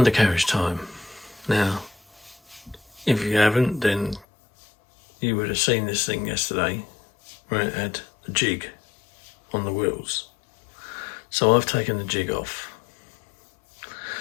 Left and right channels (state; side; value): drops out; right; at 4.2 s